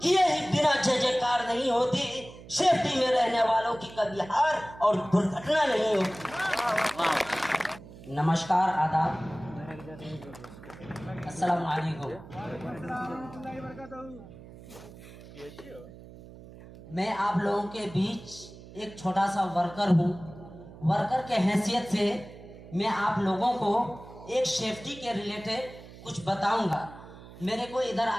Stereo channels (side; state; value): right; noise; hum, 17 dB below the sound